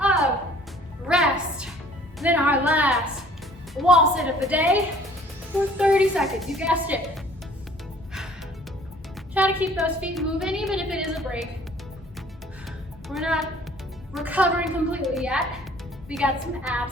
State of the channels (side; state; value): both; normal; correlation 0.55